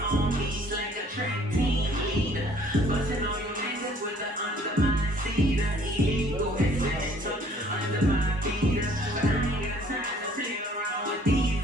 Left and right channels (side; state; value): both; normal; correlation 0.57